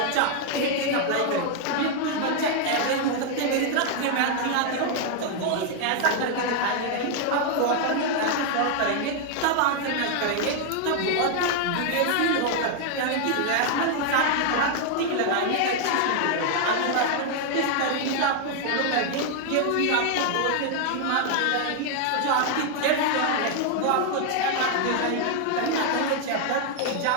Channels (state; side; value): different; both; correlation 0.00